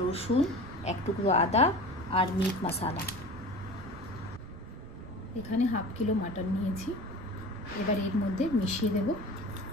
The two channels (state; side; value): noise; right; rumble, 14 dB below the sound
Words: রসুন, এক টুকরো আদা আর মিট মশলা। এখানে হাফ কিলো মাটন নিয়েছি। এবার এর মধ্যে মিশিয়ে দেব